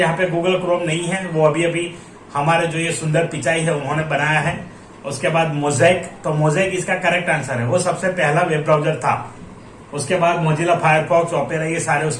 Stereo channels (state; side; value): identical; both; correlation 1.00